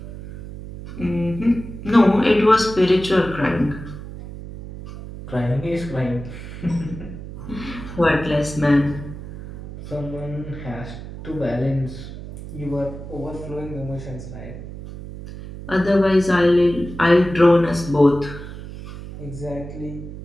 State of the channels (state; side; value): noise; right; hum, 12 dB below the sound